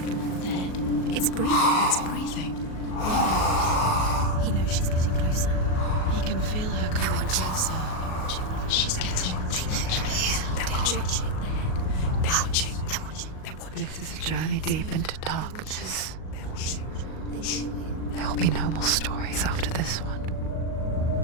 Dead. It's breathing. It's breathing. He knows she's getting closer. He can feel her coming closer. She's getting closer. They're watching. They're watching. They're watching. This is a journey deep into darkness. There will be no more stories after this one.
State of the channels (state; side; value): late; right; 38 ms